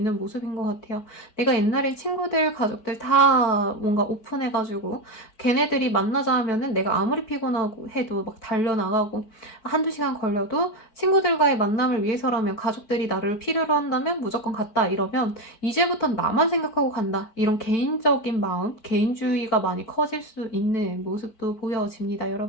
모습인 것 같아요. 내가 옛날에 친구들, 가족들 다 뭔가 오픈해가지고 걔네들이 만나자 하면은 내가 아무리 피곤하고 해도 막 달려나가고, 한두 시간 걸려도 친구들과의 만남을 위해서라면, 가족들이 나를 필요로 한다면 무조건 갔다 이러면 이제부턴 나만 생각하고 간다, 이런 개인적인 마음, 개인주의가 많이 커질 수 있는 모습도 보여집니다,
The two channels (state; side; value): late; right; 4.5 ms